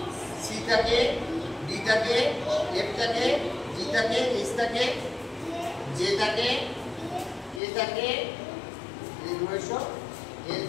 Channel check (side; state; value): right; drops out; at 7.6 s